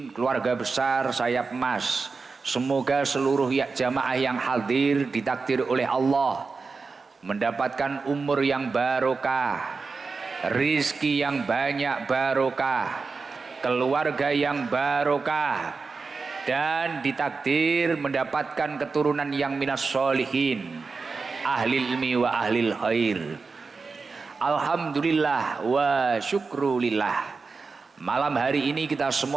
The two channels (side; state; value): left; quieter; 4.5 dB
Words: keluarga besar Sayap Emas. Semoga seluruh jamaah yang hadir ditakdir oleh Allah mendapatkan umur yang barokah, rizki yang banyak barokah, keluarga yang barokah, dan ditakdir mendapatkan keturunan yang minas sholihin, ahli ilmi wa ahlil khair. Alhamdulillah wa syukrulillah. Malam hari ini kita